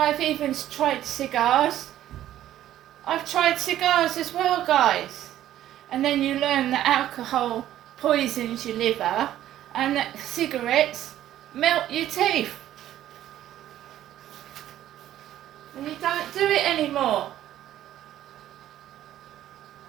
even tried cigars. I've tried cigars as well, guys. And then you learn that alcohol poisons your liver and that cigarettes melt your teeth. And you don't do it anymore.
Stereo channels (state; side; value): quieter; left; 12.5 dB